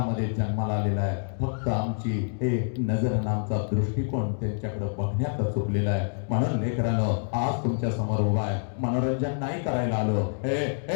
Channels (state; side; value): silent; right; digital silence